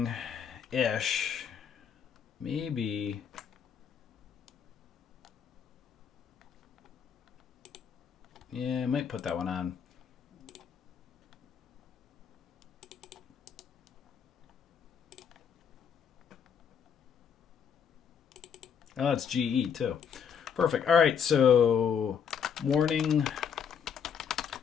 ish. Maybe. Yeah, I might put that one on. Oh, it's GE too. Perfect. All right, so Morning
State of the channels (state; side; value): quieter; right; 7.5 dB